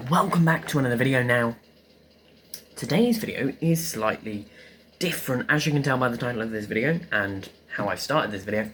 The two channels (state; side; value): identical; both; correlation 1.00